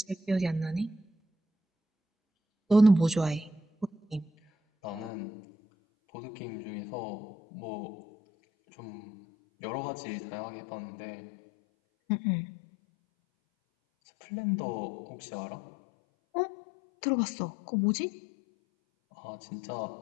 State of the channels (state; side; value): drops out; right; at 5.1 s